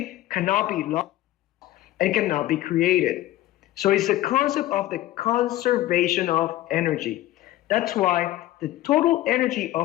cannot be lost and cannot be created. So it's the concept of the conservation of energy. That's why the total energy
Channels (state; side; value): quieter; right; 15.3 dB